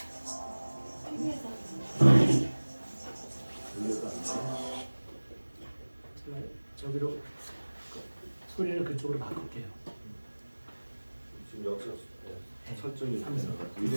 저기로 소리를 그쪽으로 바꿀게요. 지금 여기서 설정이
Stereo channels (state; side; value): inverted; both; correlation -1.00